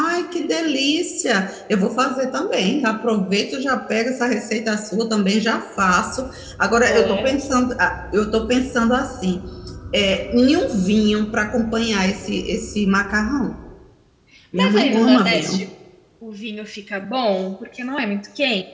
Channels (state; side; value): identical; both; correlation 1.00